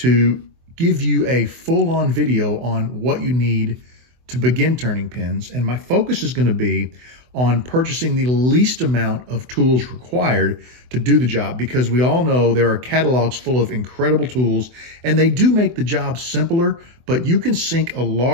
give you a full-on video on what you need to begin turning pins. And my focus is going to be on purchasing the least amount of tools required to do the job, because we all know there are catalogs full of incredible tools and they do make the job simpler, but you can sink a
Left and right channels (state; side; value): late; left; 24 ms